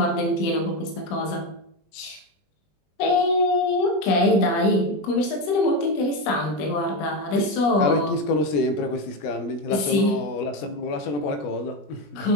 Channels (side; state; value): right; late; 20 ms